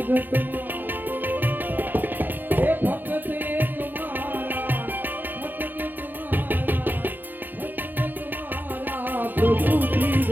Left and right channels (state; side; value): late; left; 0.090 ms